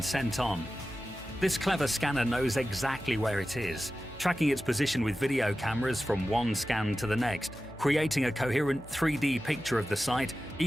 sent on. This clever scanner knows exactly where it is, tracking its position with video cameras from one scan to the next, creating a coherent 3D picture of the site,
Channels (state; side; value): noise; left; hum, 19 dB below the sound